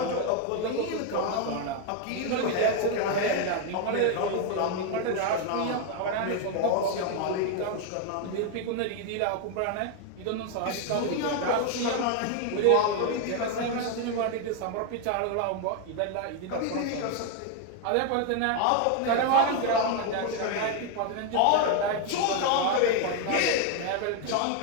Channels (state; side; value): different; both; correlation 0.01